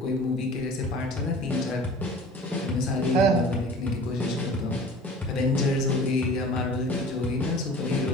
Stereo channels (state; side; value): normal; both; correlation 0.43